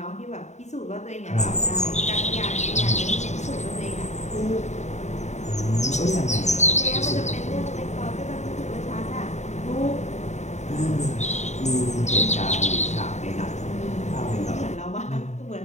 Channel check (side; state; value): right; late; 0.33 ms